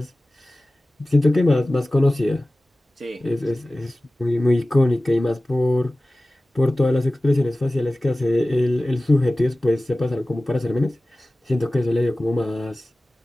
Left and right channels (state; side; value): normal; both; correlation 0.97